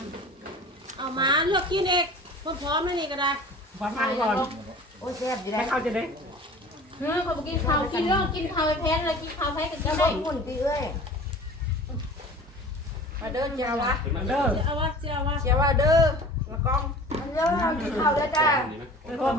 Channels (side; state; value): both; normal; correlation 0.42